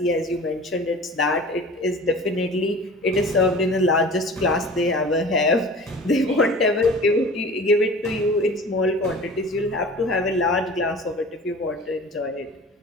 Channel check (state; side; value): normal; both; correlation 0.41